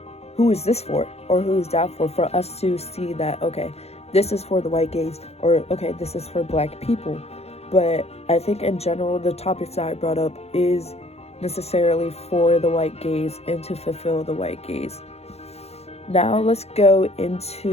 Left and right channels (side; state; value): right; late; 0.30 ms